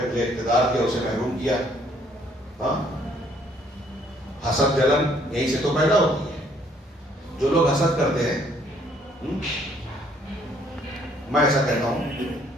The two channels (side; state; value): both; normal; correlation 0.64